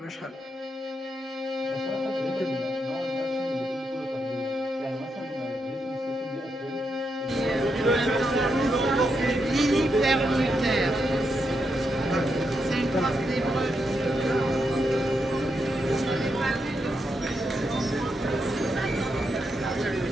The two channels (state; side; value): normal; both; correlation 0.82